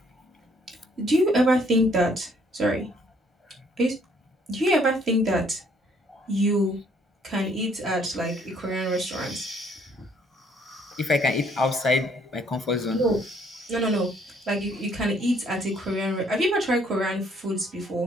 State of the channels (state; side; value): normal; both; correlation 0.64